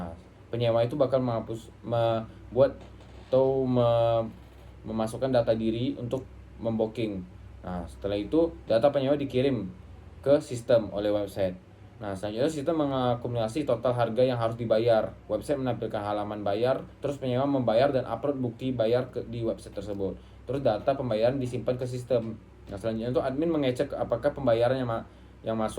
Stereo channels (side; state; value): both; identical; correlation 1.00